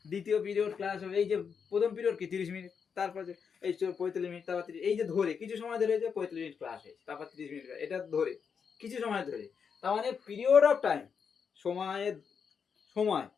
দ্বিতীয় পিরিয়ড ক্লাস হবে, এই যে প্রথম পিরিয়ড কি 30 মিনিট, তারপরে এই 45 মিনিট, তারপর 30, এই যে ধরে কিছু সময় ধরে যে 45 মিনিট ক্লাস হয়েছে, তারপর 30 মিনিট, এটা ধরে কিছু সময় ধরে। তার মানে পিরিয়ড অফ টাইম, সময়ের সময়,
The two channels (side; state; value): right; quieter; 6.5 dB